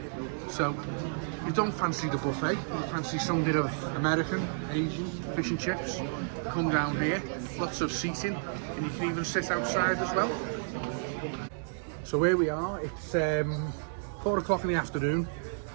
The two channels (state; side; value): silent; left; digital silence